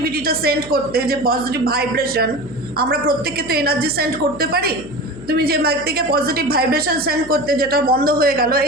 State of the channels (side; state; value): left; noise; hum, 18 dB below the sound